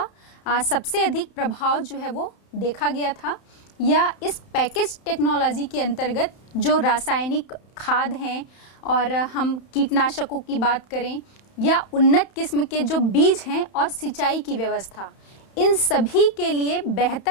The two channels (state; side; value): late; right; 31 ms